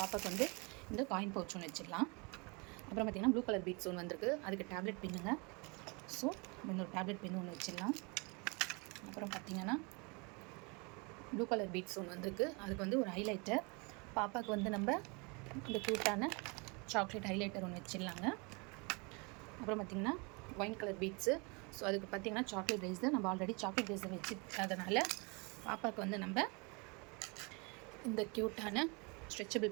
வந்து இந்த காயின் பவுச் ஒன்று வச்சிடலாம். அப்புறம் பார்த்திங்கன்னா ப்ளூ கலர் பீட்ஸ் ஒன்று வந்திருக்கு. அதுக்கு டேப்லெட் பின்னுங்க. ஸோ இன்னொரு டேப்லெட் பின்னு ஒன்று வச்சிடலாம். அப்புறம் பார்த்திங்கன்னா ப்ளூ கலர் பீட்ஸ் ஒன்று வந்திருக்கு. அதுக்கு வந்து ஒரு ஹைலைட்டர். பாப்பாவுக்கு வந்து நம்ம இந்த க்யூட்டான சாக்லேட் ஹைலைட்டர் ஒன்று வச்சிடலாங்க. அப்புறம் பார்த்திங்கன்னா ஒயின் கலர் பீட்ஸு. ஸோ அதுக்கு பார்த்திங்கன்னா சாக்லேட் ரேசர். நம்ம ஆல்ரெடி சாக்லேட் ரேசர் வச்சுருக்கிறதுனால பாப்பாவுக்கு வந்து நம்ம இந்த க்யூட்டான ஸ்ட்ரெச்சபிள்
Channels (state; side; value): quieter; left; 30.3 dB